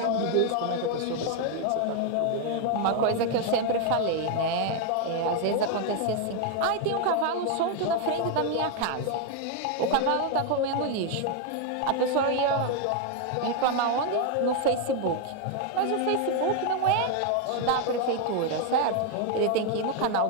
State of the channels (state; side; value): different; both; correlation 0.01